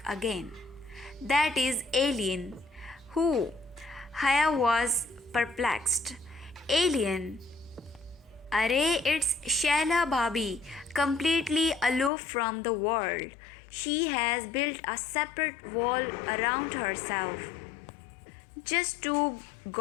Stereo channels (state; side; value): drops out; right; at 12.1 s